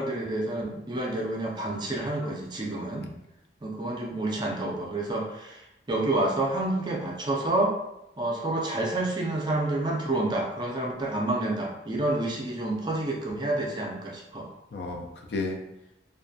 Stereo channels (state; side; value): normal; both; correlation 0.49